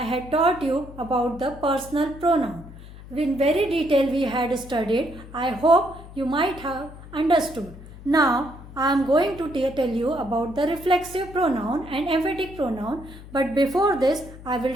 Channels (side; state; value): left; noise; hum, 16 dB below the sound